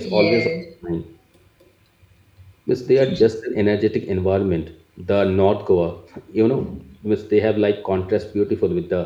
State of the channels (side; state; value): both; identical; correlation 1.00